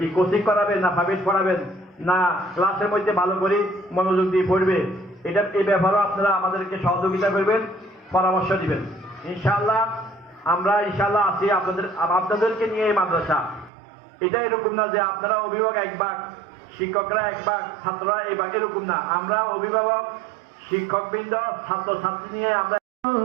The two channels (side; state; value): left; drops out; at 13.7 s